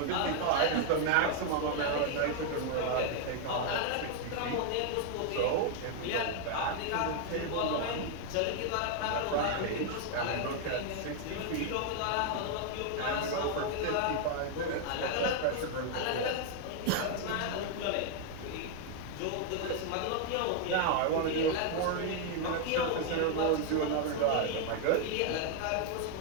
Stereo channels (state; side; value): different; both; correlation 0.00